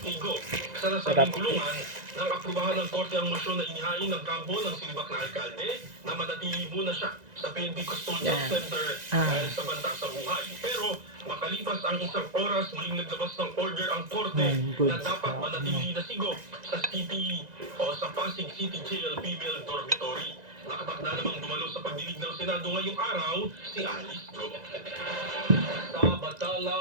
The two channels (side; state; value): left; late; 1.9 ms